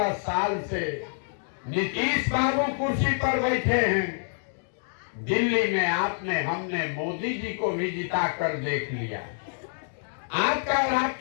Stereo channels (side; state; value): right; silent; digital silence